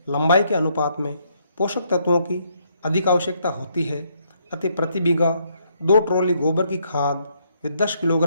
लंबाई के अनुपात में पोषक तत्वों की अधिक आवश्यकता होती है। अतः प्रति बीघा 2 ट्रॉली गोबर की खाद व 10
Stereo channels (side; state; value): both; inverted; correlation -0.72